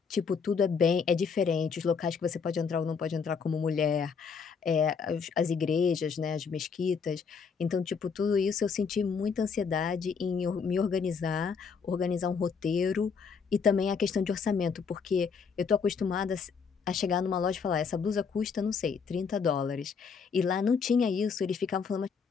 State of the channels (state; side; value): quieter; right; 5.9 dB